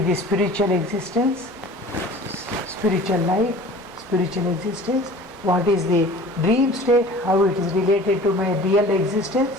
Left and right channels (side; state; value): both; normal; correlation 0.43